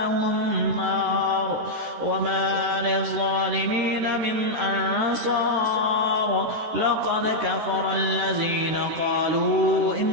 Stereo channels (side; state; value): left; late; 13 ms